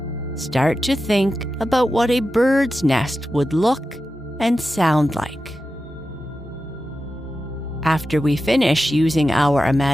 Start to think about what a bird's nest would look and sound like. After we finish using our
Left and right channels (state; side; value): normal; both; correlation 0.92